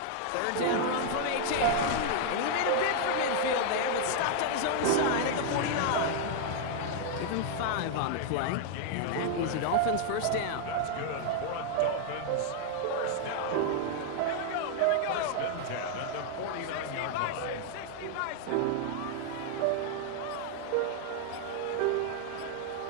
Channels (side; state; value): both; different; correlation 0.00